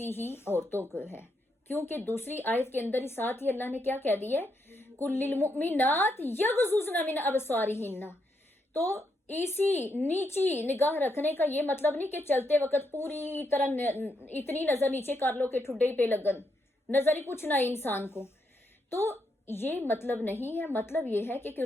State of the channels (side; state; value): both; normal; correlation 0.79